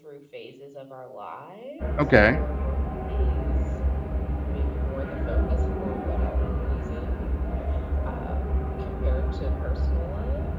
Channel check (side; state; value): both; identical; correlation 1.00